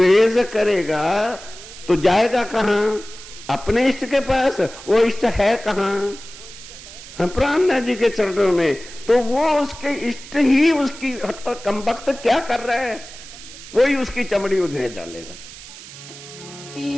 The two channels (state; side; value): noise; right; hiss, 16 dB below the sound